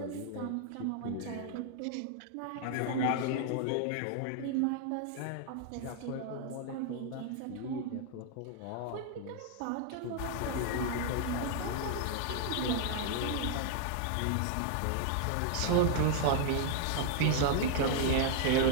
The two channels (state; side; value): different; both; correlation 0.00